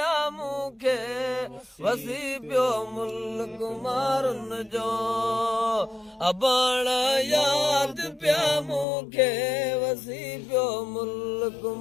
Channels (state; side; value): drops out; right; at 8.8 s